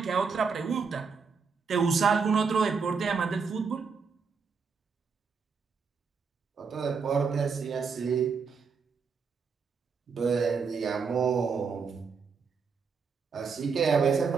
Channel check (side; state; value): left; quieter; 5.5 dB